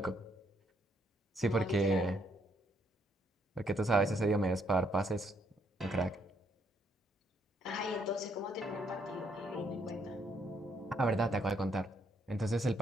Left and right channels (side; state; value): both; normal; correlation 0.71